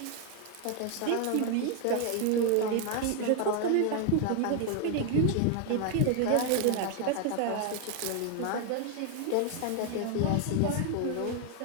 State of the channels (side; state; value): both; different; correlation 0.01